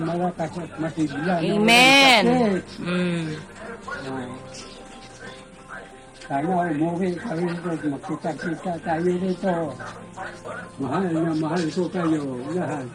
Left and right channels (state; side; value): identical; both; correlation 1.00